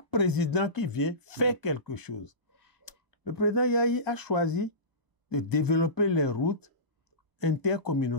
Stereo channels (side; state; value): left; late; 1.0 ms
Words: président qui vient fait quelque chose. Le président Yahi a choisi de développer les routes